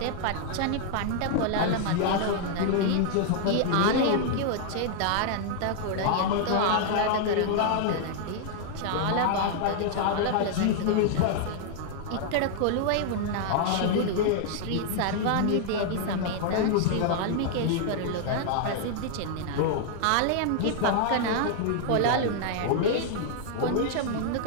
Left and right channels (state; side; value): different; both; correlation -0.01